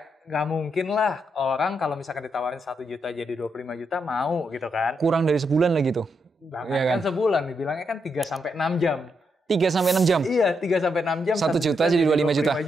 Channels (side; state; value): both; normal; correlation 0.81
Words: nggak mungkin lah orang kalau misalkan ditawarin 1 juta jadi 25 juta mau gitu kan. Kurang dari sebulan lagi tuh. Bahkan Iya kan sebulan, dibilangnya kan 3-6 jam. 3-6 jam? Iya, 3-6 jam. 1 juta jadi 25 juta?